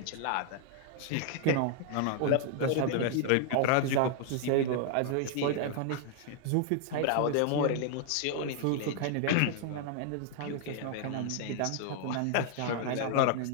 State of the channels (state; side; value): different; both; correlation 0.00